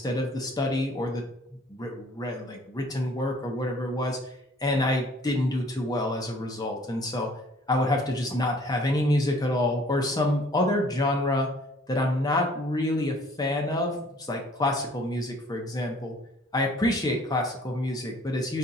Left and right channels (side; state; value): both; normal; correlation 0.55